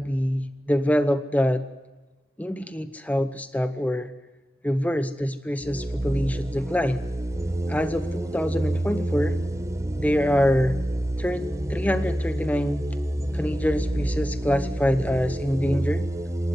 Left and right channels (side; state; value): both; normal; correlation 0.93